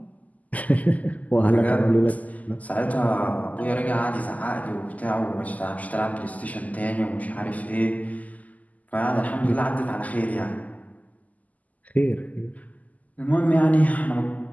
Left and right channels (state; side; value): late; right; 0.076 ms